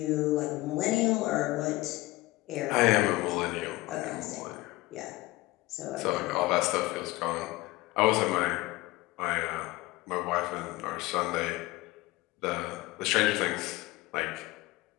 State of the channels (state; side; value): quieter; right; 19.9 dB